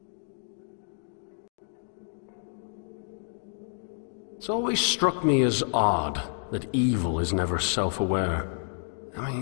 It's always struck me as odd that evil is never self-aware. I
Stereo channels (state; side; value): silent; right; 58 dB below the other